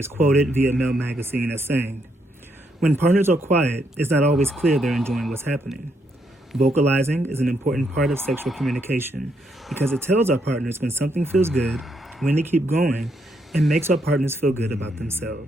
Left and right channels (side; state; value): both; normal; correlation 0.76